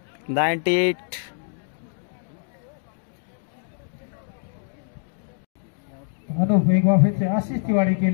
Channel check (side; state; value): right; silent; digital silence